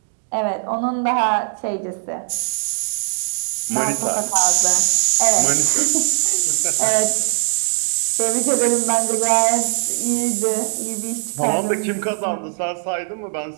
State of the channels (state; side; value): silent; left; digital silence